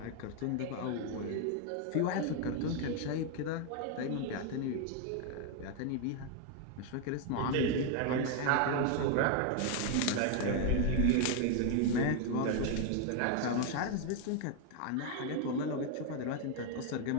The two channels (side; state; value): both; different; correlation 0.01